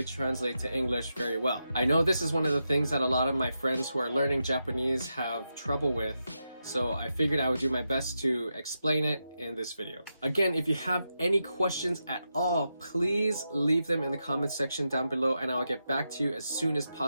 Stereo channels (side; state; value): both; inverted; correlation -0.87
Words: translate to English very well. I know this is one of the things that a lot of my friends who are learning Japanese have trouble with. So I figured I would do my best to explain it in this video. Again, if you have any questions at all, please leave them in the comment section down below and I'll get back to you as soon as